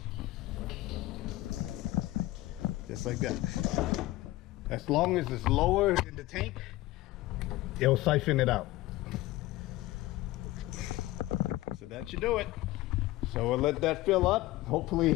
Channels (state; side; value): quieter; right; 17.7 dB